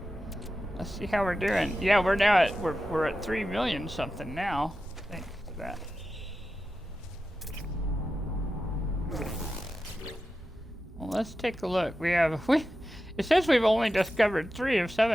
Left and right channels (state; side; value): normal; both; correlation 0.92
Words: Let's see how we're doing. Yeah, we're now at we're at 3 million something now. Thanks to that. Well, let's take a look. It says we've only discovered 3 of